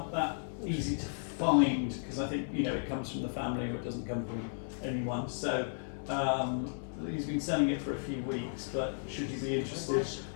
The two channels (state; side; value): silent; right; 55 dB below the other